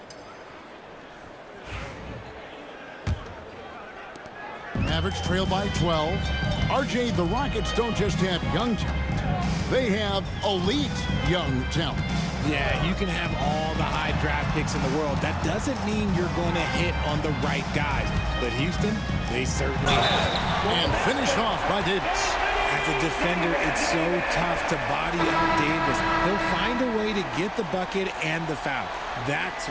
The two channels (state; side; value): identical; both; correlation 1.00